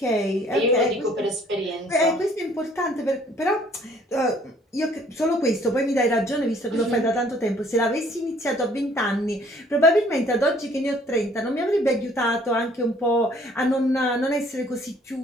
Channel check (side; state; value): both; normal; correlation 0.59